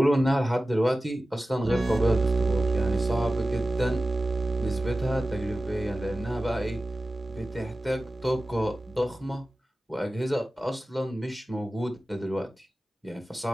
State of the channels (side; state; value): both; normal; correlation 0.95